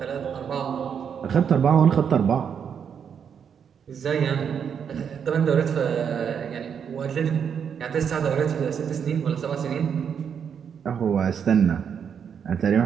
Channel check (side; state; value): left; quieter; 7.5 dB